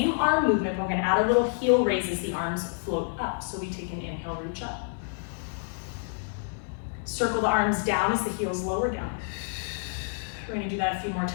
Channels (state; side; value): silent; right; 59 dB below the other